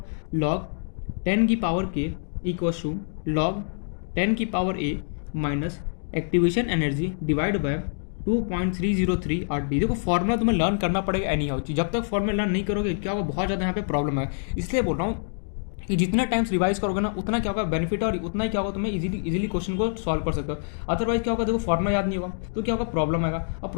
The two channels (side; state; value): right; silent; digital silence